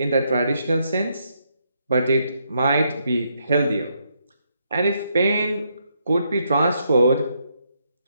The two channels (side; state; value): both; inverted; correlation -0.77